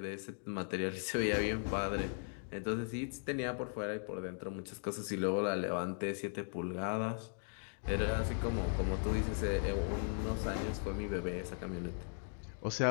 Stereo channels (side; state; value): right; silent; 52 dB below the other